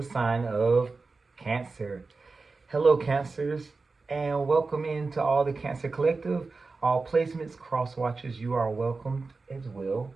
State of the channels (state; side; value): quieter; left; 4.0 dB